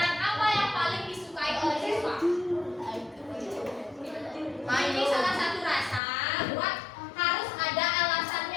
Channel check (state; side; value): drops out; right; at 6.0 s